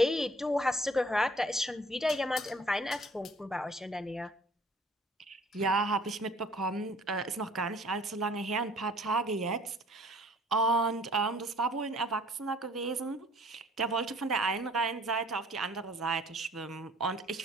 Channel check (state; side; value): normal; both; correlation 0.55